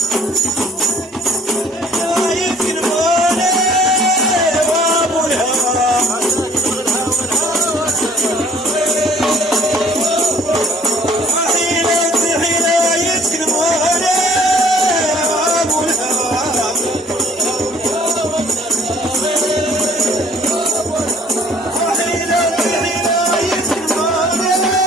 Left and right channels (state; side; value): normal; both; correlation 0.57